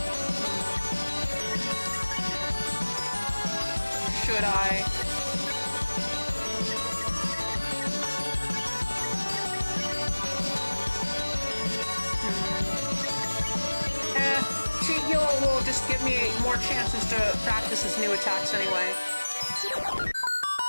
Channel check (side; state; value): both; inverted; correlation -1.00